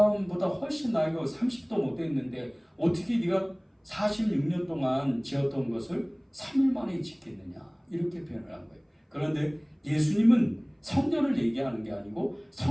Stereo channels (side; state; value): both; identical; correlation 1.00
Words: 훨씬 나이가 30도 못 됐는데 어떻게 네가 46년 동안 지었던 것을 3일 만에 짓겠느냐. 이렇게 표현을 한 거예요. 그런데 예수님은 성전을 얘기하는 게 아니고